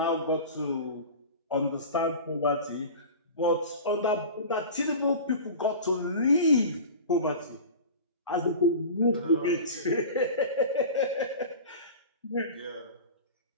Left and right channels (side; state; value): both; inverted; correlation -0.34